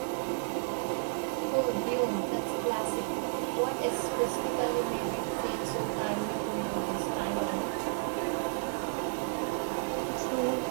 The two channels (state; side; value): silent; left; 56 dB below the other